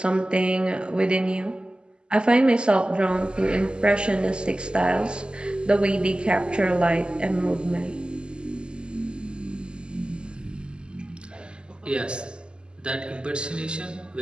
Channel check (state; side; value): late; left; 0.049 ms